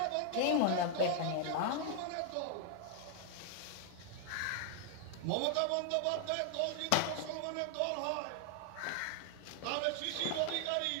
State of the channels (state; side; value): different; both; correlation 0.00